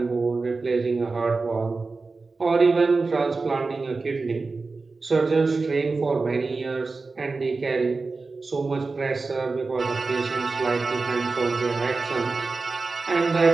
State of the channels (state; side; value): quieter; left; 3.9 dB